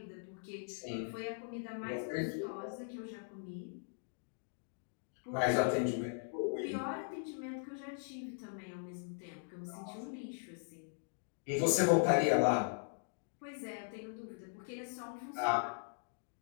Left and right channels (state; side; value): silent; right; digital silence